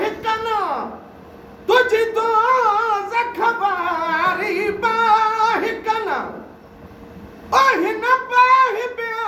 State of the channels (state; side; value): identical; both; correlation 1.00